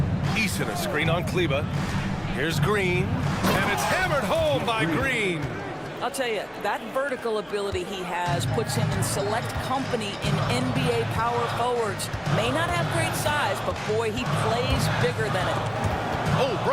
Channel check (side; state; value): both; identical; correlation 1.00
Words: Eason, a screen on Kleba. Here's Green. And it's hammered home by Green. I'll tell you, that vertical ability he has puts him in select company in NBA power forwards. May not have great size, but boy, he plays bigger than it. Oh,